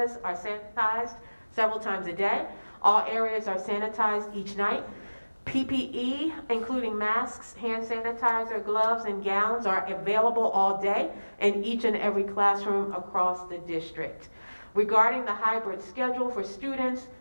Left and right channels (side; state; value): both; inverted; correlation -1.00